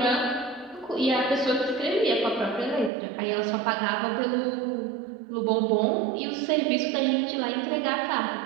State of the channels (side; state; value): left; drops out; at 2.9 s